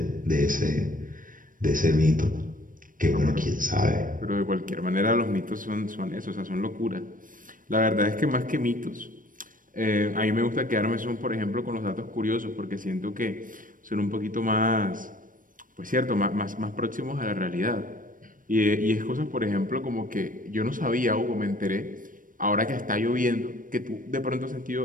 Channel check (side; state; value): left; late; 0.39 ms